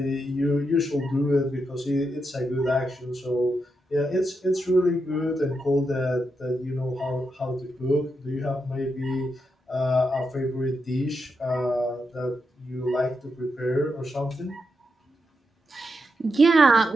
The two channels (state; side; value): normal; both; correlation 0.84